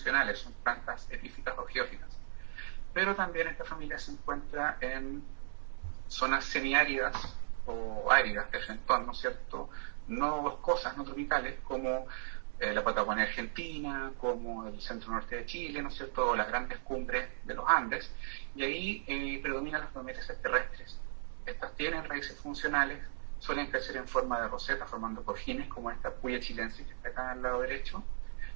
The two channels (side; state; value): left; silent; 53 dB below the other